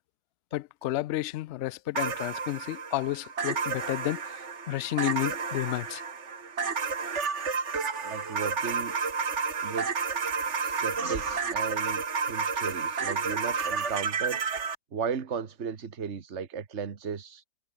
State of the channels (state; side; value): late; left; 3.3 ms